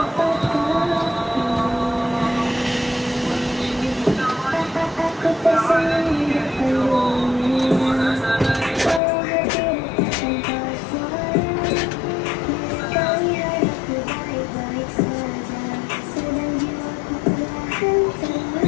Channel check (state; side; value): drops out; right; at 9.0 s